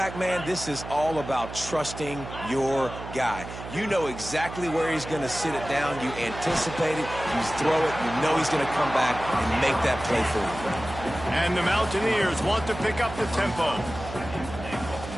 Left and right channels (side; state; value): right; noise; hum, 11 dB below the sound